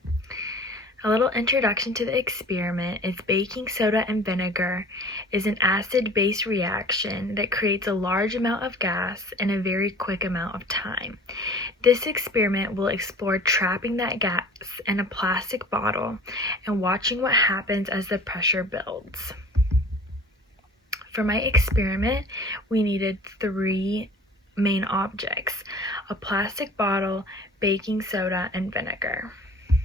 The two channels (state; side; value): normal; both; correlation 0.45